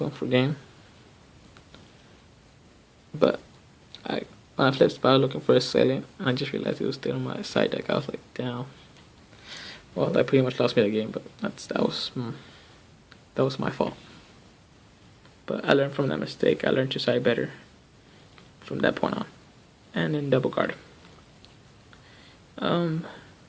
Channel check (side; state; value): both; identical; correlation 1.00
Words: went for game. But when I Flip Spy, I was looking for a Assailant, and I just realized it was still on my side deck. I was like, damn. Well, that pretty much lost me the game, but that was my fault. But I learned from that mistake. I learned to side better from that point on. And then double guard.